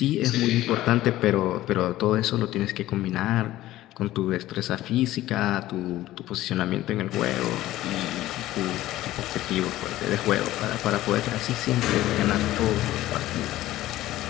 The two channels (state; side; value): quieter; right; 15.4 dB